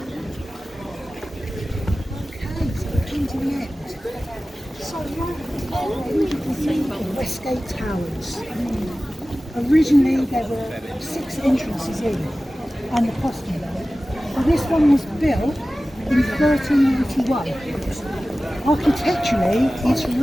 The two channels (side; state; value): both; normal; correlation 0.96